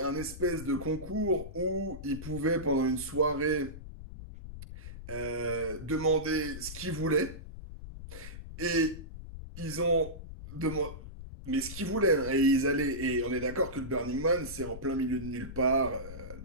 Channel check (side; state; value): left; noise; rumble, 11 dB below the sound